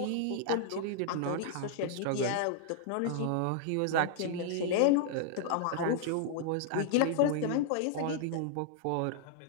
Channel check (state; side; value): different; both; correlation -0.01